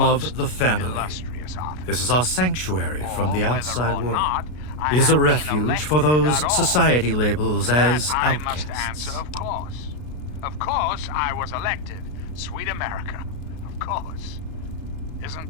of the family. This is our sanctuary from the outside world. It is a refuge for those society labels as outcasts. Of course, I was elected. Sweet America. Of course.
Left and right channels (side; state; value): right; late; 33 ms